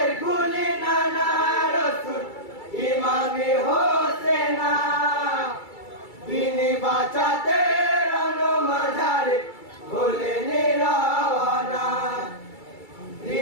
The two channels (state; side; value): late; right; 2.3 ms